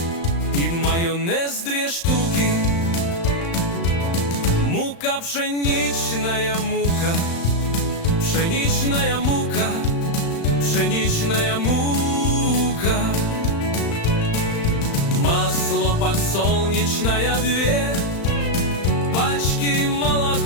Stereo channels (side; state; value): right; late; 35 ms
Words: и майонез 2 штуки. Мука, пшеничная мука, пшеничная мука, пшеничная мука. Масло подсолнечное 2 пачки,